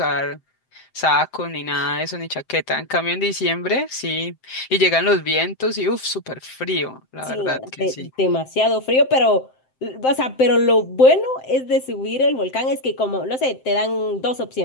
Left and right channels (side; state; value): right; late; 7.7 ms